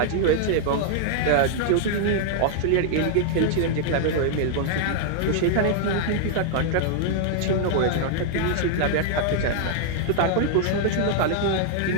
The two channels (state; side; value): different; both; correlation -0.01